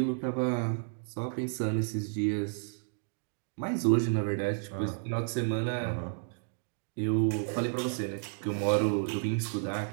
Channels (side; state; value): left; silent; digital silence